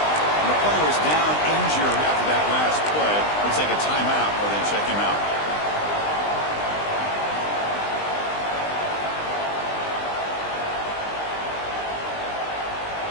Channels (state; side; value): late; right; 20 ms